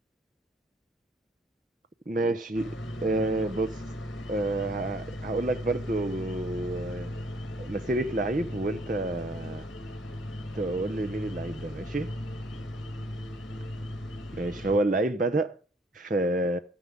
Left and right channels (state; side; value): normal; both; correlation 0.62